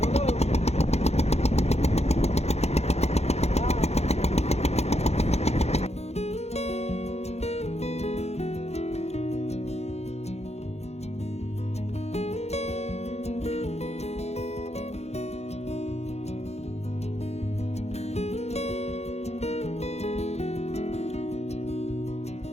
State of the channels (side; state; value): right; late; 0.31 ms